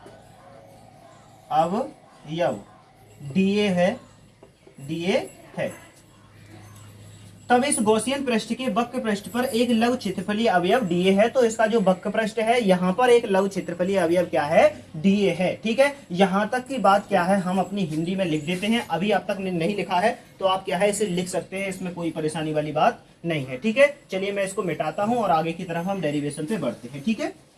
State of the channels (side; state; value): both; identical; correlation 1.00